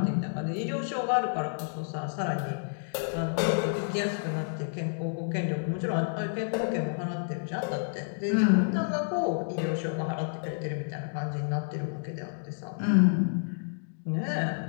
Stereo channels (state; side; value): silent; right; digital silence